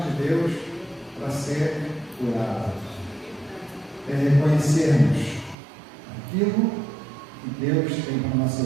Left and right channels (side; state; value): left; drops out; at 5.6 s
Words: Deus para ser curado. É reconhecermos aquilo que Deus tem para a nossa